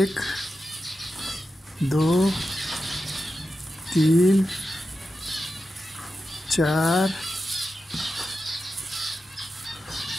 दो, तीन, चार,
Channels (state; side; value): normal; both; correlation 0.90